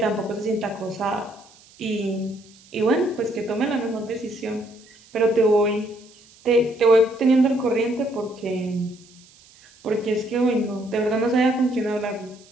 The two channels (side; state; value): right; noise; hiss, 26 dB below the sound